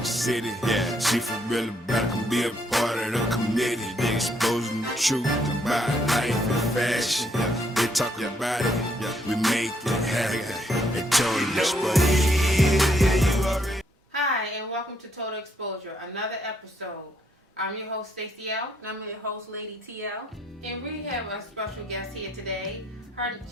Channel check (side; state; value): both; normal; correlation 0.72